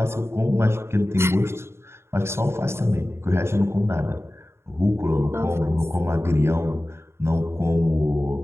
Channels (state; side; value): late; left; 0.12 ms